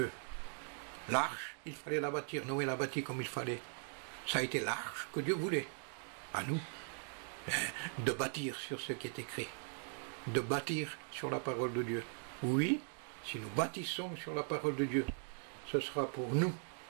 L'arche, il fallait la bâtir. Noé l'a bâtie comme il fallait. Ça a été l'arche que Dieu voulait. À nous, de bâtir sur ce qui est écrit. De bâtir sur la parole de Dieu. Oui, si nous bâtissons sur la parole de Dieu, ce sera pour nous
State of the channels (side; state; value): left; silent; 51 dB below the other